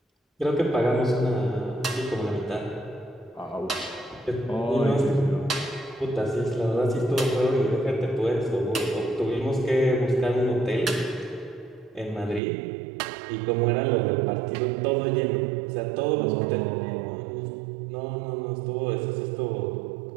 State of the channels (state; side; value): drops out; left; at 12.4 s